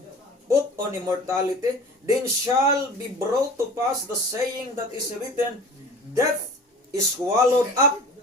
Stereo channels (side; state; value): both; normal; correlation 0.41